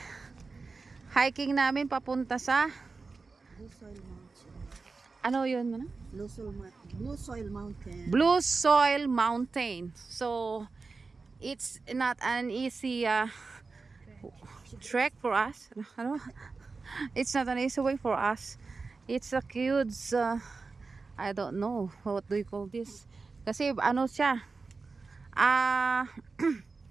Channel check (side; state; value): left; quieter; 4.2 dB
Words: hiking namin papunta sa Blue Soil Mountain. ano yun? Ano? Blue Soil Mountain. Blue Soil Mountain. So it's not an easy trek for us. Ano? It's not an easy way for us. It's a huge I don't know what do you call this. Kasi ano siya?